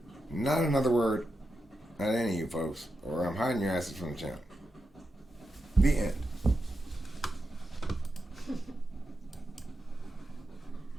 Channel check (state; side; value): normal; both; correlation 0.87